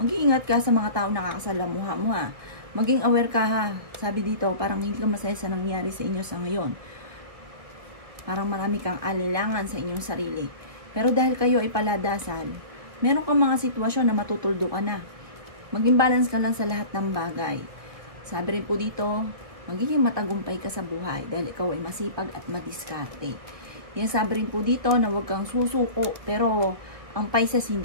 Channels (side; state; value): left; late; 1.9 ms